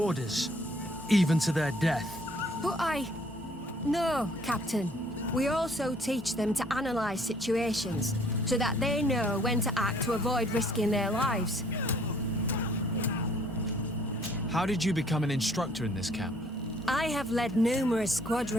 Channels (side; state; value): both; normal; correlation 0.60